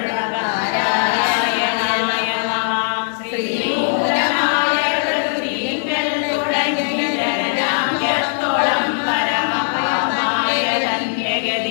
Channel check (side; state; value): right; silent; digital silence